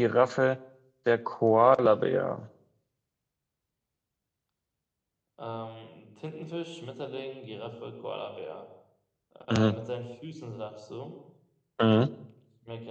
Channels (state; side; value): identical; both; correlation 1.00